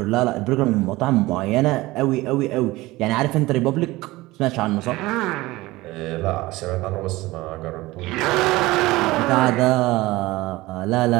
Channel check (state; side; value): quieter; left; 19.7 dB